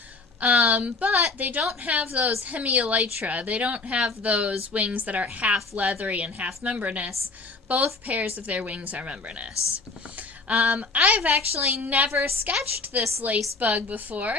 But they don't have those hemielytra. They don't have those wings that are half leathery and half membranous. Both pairs of their wings are membranous. I've actually never sketched this lace bug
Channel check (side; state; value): right; quieter; 3.7 dB